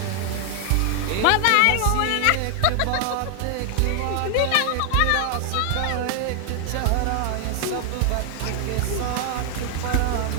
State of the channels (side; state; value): both; different; correlation 0.00